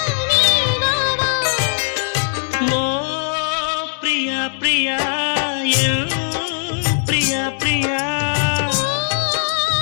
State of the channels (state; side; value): silent; right; digital silence